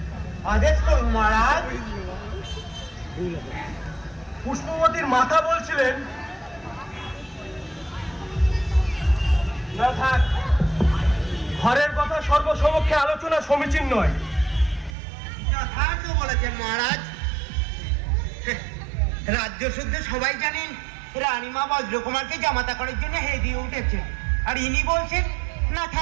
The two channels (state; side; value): drops out; left; at 15.0 s